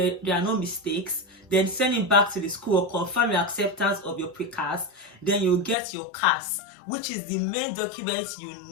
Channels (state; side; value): drops out; right; at 5.8 s